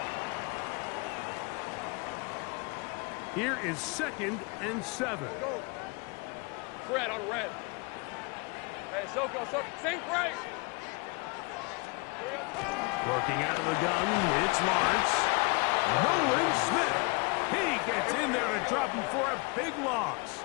Here is 2nd and 7. Go. Fred on red. Hey, Soko, sink right. Working out of the gun, it's Lawrence. Nolan Smith. He gets in there to drop him for a big loss.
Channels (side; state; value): right; quieter; 30.0 dB